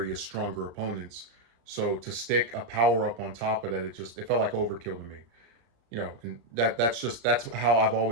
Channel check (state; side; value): late; left; 34 ms